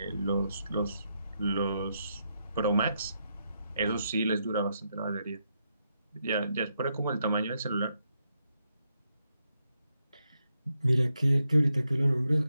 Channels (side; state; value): both; inverted; correlation -0.82